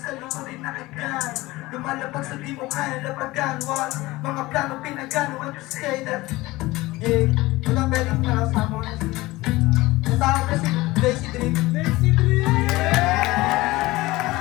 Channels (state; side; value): quieter; right; 19.8 dB